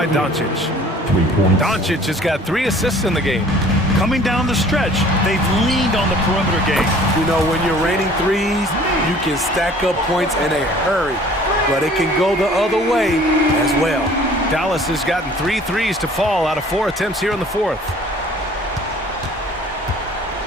Doncic. Doncic has got 3 assists in the game. Coming down the stretch, they've leaned on the perimeter game. You know, when you're raining threes, you can stack up points in a hurry, but it can go the other way as well. Dallas has gotten 3 threes to fall out of 4 attempts here in the 4th.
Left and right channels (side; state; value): both; normal; correlation 0.51